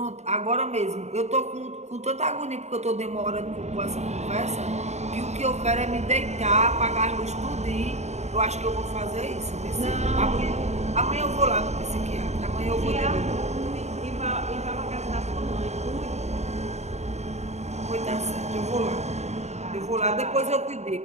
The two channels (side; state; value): left; late; 0.32 ms